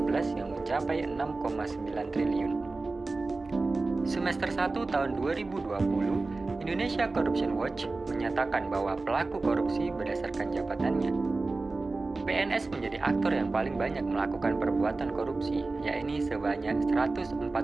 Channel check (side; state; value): left; quieter; 3.5 dB